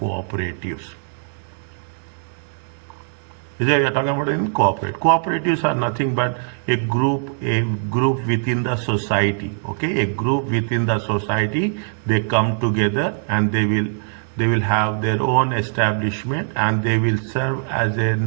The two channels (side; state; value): left; silent; digital silence